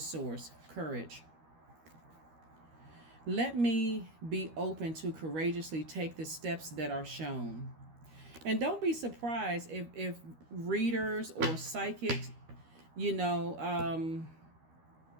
Courage. Let me be open to courageously take the steps that are shown. And don't be surprised if readers or psychics,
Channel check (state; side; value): late; left; 13 ms